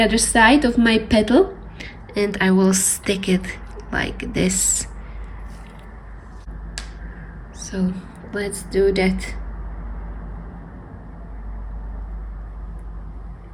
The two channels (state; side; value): identical; both; correlation 1.00